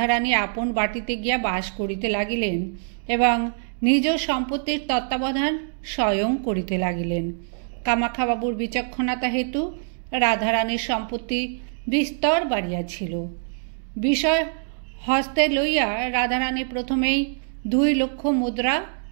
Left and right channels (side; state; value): left; silent; digital silence